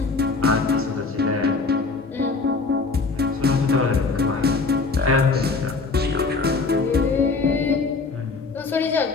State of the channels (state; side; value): quieter; right; 4.1 dB